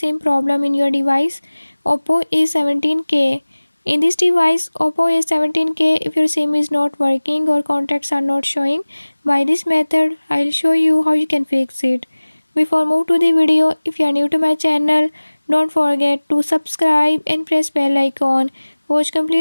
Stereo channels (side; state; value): both; inverted; correlation -1.00